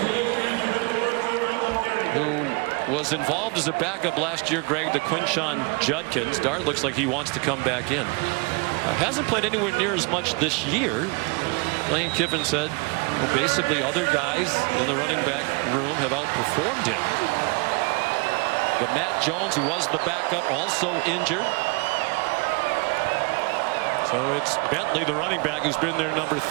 who was involved as a backup last year, Greg, to Quinshon Judkins. Dart looks like he wants to come back in. Hasn't played anywhere near as much this year. Lane Kiffin said, well, basically other guys in the running back room have outperformed him. But Matt Jones, who was the backup, also injured. So it's Bentley, the running back, who's been their number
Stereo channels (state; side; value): quieter; left; 30.4 dB